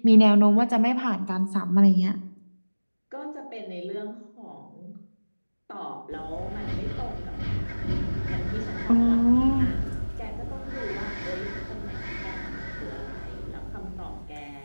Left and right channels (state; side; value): inverted; both; correlation -1.00